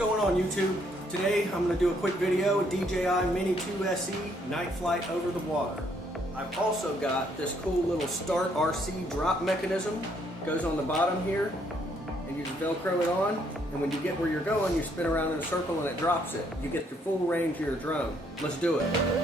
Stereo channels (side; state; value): both; normal; correlation 0.69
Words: going on YouTube? Today I'm going to do a quick video, DJI Mini 2 SE night flight over the water. I've also got this cool little Start RC drop mechanism. Goes on the bottom here and you just Velcro it on, and when you get where you're going you spin around in a circle and it drops it. You get the full range of your drone. Let's do